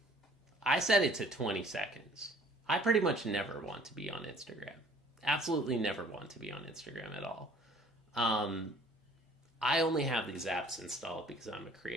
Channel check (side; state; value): both; normal; correlation 0.54